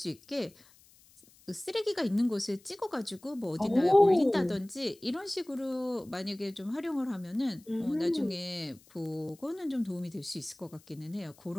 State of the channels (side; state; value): left; noise; hiss, 27 dB below the sound